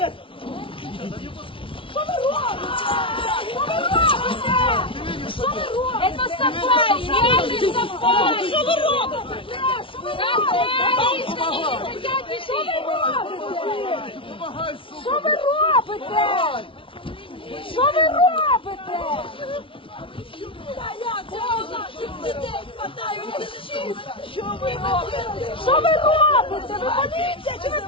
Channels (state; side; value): late; right; 0.25 ms